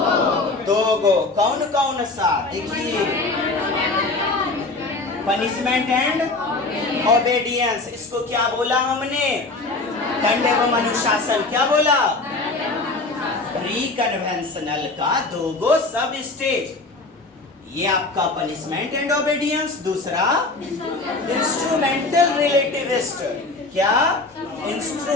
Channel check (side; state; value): right; quieter; 3.3 dB